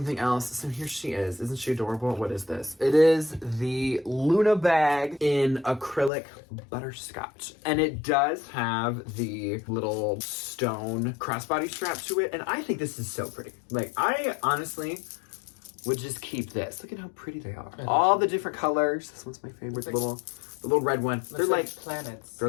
else. So here she is. Isn't she adorable? What is this? It is the Luna bag in acrylic butterscotch. And it does have the little stone crossbody strap to it. And I think this is so pretty. Like, I honestly would just keep this. Look at how pretty they are. All the different colors. This one's my favorite. The little red one. They're like planets. They're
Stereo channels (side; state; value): right; drops out; at 6.1 s